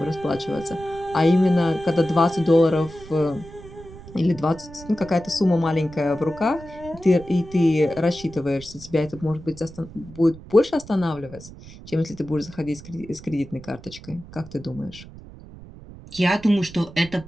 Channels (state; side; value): noise; right; rumble, 17 dB below the sound